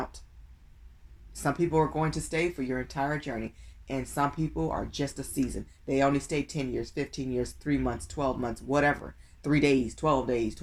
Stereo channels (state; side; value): identical; both; correlation 1.00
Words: Some people are going to stay for your entire journey. And some people are just a season. They only stay 10 years, 15 years, 3 months, 12 months, whatever. 3 days, 12 days,